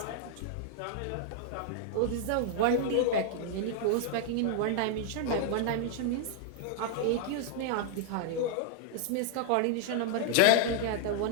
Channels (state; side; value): different; both; correlation -0.01